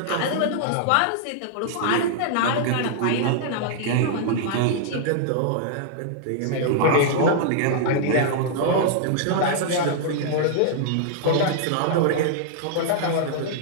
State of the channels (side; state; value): both; different; correlation -0.01